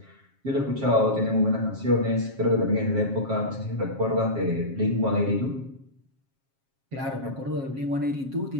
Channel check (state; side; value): late; left; 7.4 ms